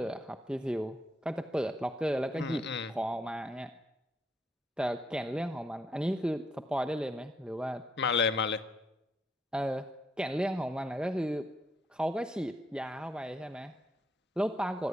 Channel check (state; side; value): normal; both; correlation 0.74